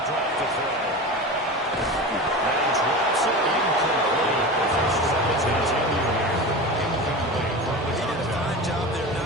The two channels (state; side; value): normal; both; correlation 0.29